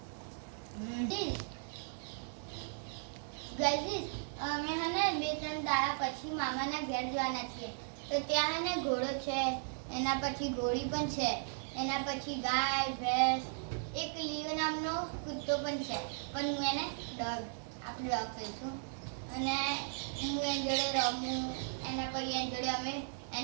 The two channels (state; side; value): silent; left; digital silence